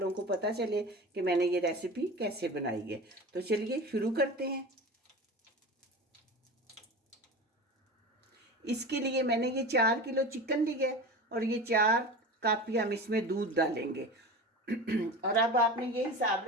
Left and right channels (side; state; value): both; normal; correlation 0.31